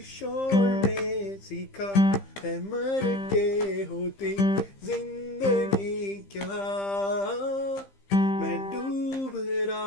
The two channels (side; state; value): right; late; 15 ms